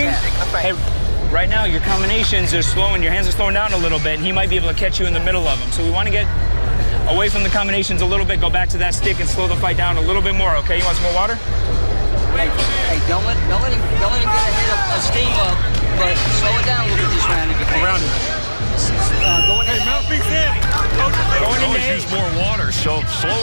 Hey, right now your combinations are slowing. Your hands are slowing down a little bit, and he might be able to catch you in the middle of them. So we want to get away from the combinations a little bit, go back to that stick, and slow the fight down a little bit more. Okay? You want some more water? Hey, don't let him get a steam up, but slow it down a little bit this round if you can. Around him. Always use more water, so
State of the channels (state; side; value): inverted; both; correlation -1.00